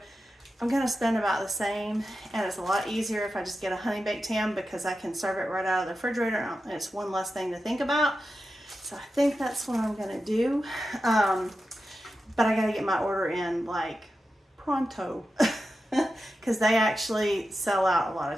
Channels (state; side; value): normal; both; correlation 0.91